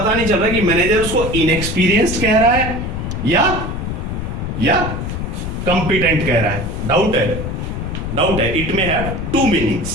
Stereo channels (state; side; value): noise; left; rumble, 4 dB below the sound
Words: नहीं चल रहा कि मैनेजर उसको इनएक्सपीरियंस्ड कह रहा है या कंपिटेंट कह रहा है। डाउट है। It may have 2